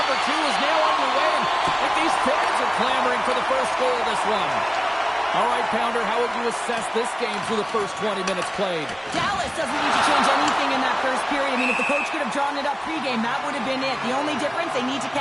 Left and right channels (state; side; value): identical; both; correlation 1.00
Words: 2 is now underway. And these fans are clamoring for the first goal of this one. All right, Pounder, how would you assess this game through the first 20 minutes played? Dallas doesn't need to change anything in that first period. I mean, if the coach could have drawn it up pregame, that would have been it. The only difference, they need to